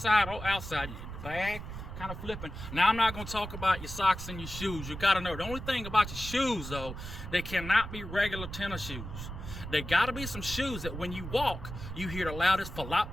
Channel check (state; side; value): noise; right; rumble, 9 dB below the sound